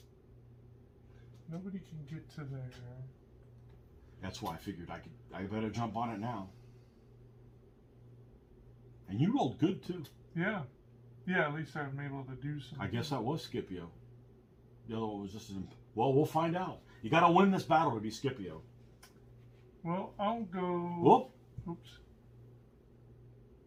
Nobody can get to there. That's why I figured I better jump on it now. And you rolled good too. Yeah. Yeah, at least I'm able to do something. I guess that was Scipio. The other one was just well, we'll find out. You got to win this battle to be Scipio. Well, I'll go. Whoop. Oops.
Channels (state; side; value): identical; both; correlation 1.00